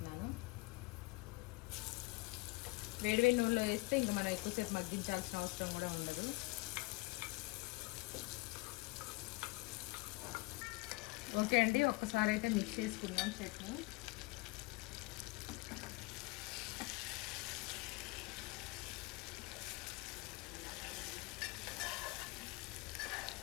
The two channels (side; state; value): right; quieter; 24.8 dB